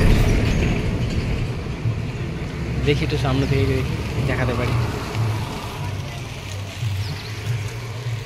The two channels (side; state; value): both; identical; correlation 1.00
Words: দেখি একটু সামনে থেকে দেখি, দেখাতে পারি।